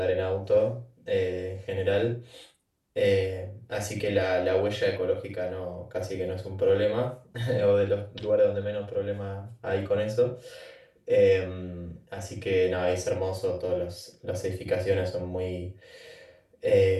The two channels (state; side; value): identical; both; correlation 1.00